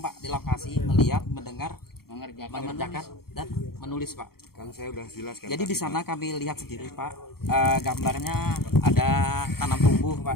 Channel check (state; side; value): late; right; 0.94 ms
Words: Pak di lokasi melihat, mendengar, mengerjakan dan menulis Pak. Kan saya udah jelaskan. Jadi di sana kami lihat sendiri Pak, gambarnya ada tanam tumbuh